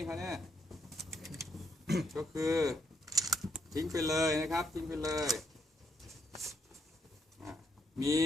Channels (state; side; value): normal; both; correlation 0.76